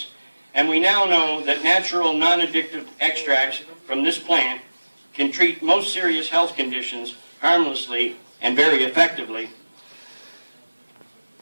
and we now know that natural non-addictive extracts from this plant can treat most serious health conditions harmlessly and very effectively,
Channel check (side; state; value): both; inverted; correlation -1.00